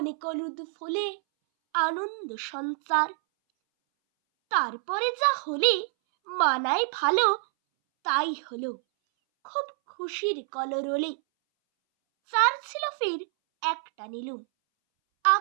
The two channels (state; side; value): silent; left; 60 dB below the other